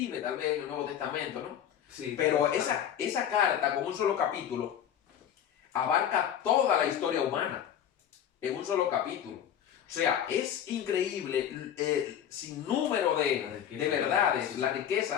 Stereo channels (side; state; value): right; quieter; 9.6 dB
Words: tal vez, en el Nuevo Testamento, ¿no? Sí, pero esa carta, con un solo capítulo, abarca toda la historia humana en un solo capítulo. O sea, es increíble el sinnúmero de verdades, la